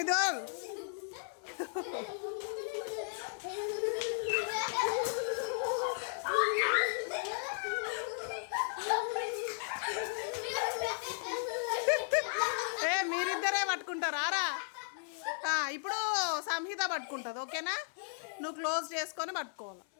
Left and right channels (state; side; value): silent; right; 54 dB below the other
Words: మీరిద్దరే పట్టుకుంటారా? ఇప్పుడు సంహిత పట్టుకుంటుంది. ఓకేనా? నువ్వు క్లోజ్ చేసుకొని పట్టుకోవాలి.